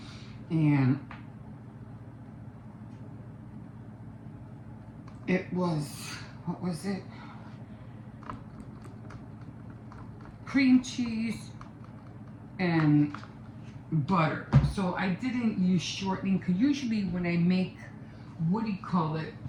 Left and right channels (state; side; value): identical; both; correlation 1.00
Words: And it was, what was it? Cream cheese and butter. So I didn't use shortening, because usually when I make, what do you call it,